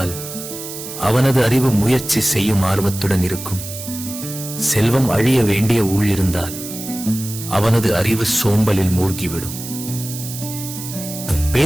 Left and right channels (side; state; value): right; noise; hiss, 10 dB below the sound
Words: அவனது அறிவு முயற்சி செய்யும் ஆர்வத்துடன் இருக்கும். செல்வம் அழிய வேண்டிய ஊழ் இருந்தால் அவனது அறிவு சோம்பலில் மூழ்கிவிடும்.